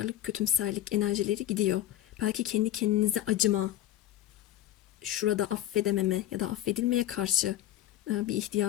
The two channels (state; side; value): quieter; right; 12.9 dB